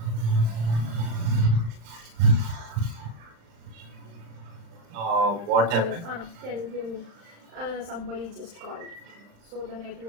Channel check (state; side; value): late; left; 35 ms